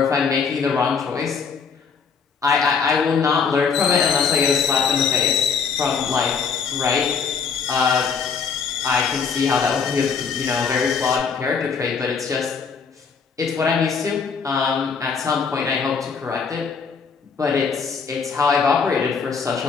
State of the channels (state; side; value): quieter; right; 5.8 dB